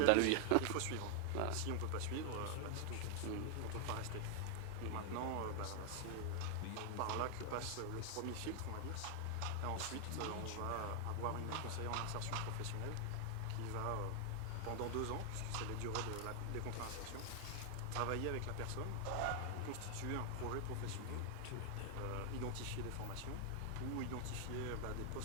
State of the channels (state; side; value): different; both; correlation 0.00